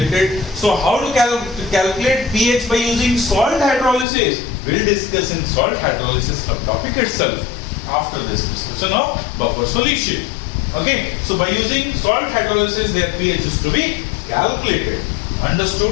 So how to calculate pH by using salt hydrolysis? We'll discuss in salt hydrolysis subtopic itself after this discussion of buffer solution. Okay, so by using salt hydrolysis, their pH is to be calculated.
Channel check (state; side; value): drops out; right; at 4.0 s